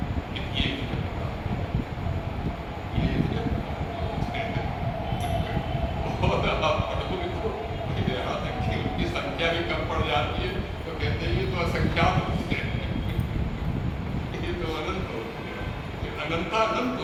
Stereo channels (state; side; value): identical; both; correlation 1.00